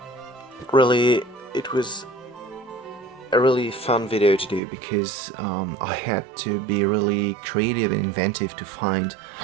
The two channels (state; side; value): drops out; left; at 4.6 s